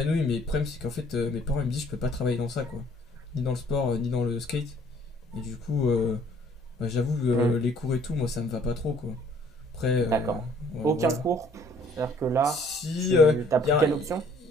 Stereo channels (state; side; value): normal; both; correlation 0.59